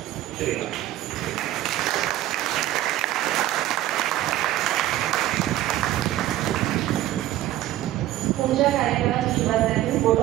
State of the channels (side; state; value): left; quieter; 14.4 dB